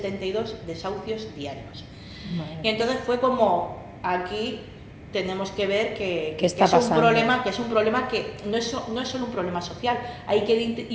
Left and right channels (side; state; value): both; identical; correlation 1.00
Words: desahucios diarios. Bueno. Y entonces fue como, aquí tenemos que ver que es un problema que no es solo un problema social, hay que